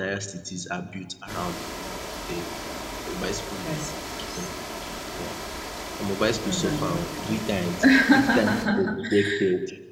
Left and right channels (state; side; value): identical; both; correlation 1.00